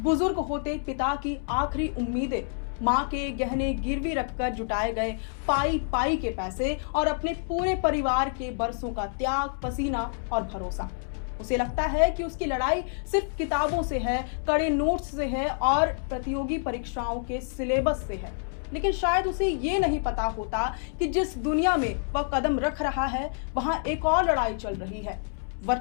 होते पिता की आखिरी उम्मीदें, माँ के गहने गिरवी रखकर जुटाए गए पाई पाई के पैसे और अपने पूरे परिवार के बरसों का त्याग, पसीना और भरोसा। उसे लगता है कि उसकी लड़ाई सिर्फ किताबों से है, कड़े नोट्स से है और प्रतियोगी परीक्षाओं के सिलेबस से है। लेकिन शायद उसे ये नहीं पता होता कि जिस दुनिया में वह कदम रख रहा है वहां एक और लड़ाई चल रही है।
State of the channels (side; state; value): right; silent; 60 dB below the other